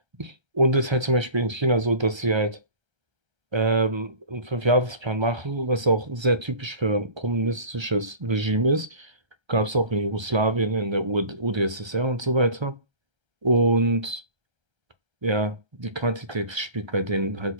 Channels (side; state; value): left; late; 1.3 ms